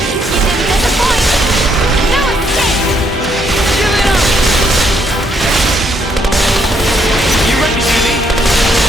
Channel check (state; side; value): normal; both; correlation 0.72